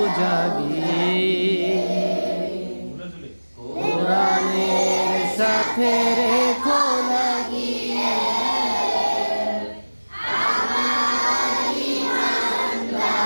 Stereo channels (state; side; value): inverted; both; correlation -1.00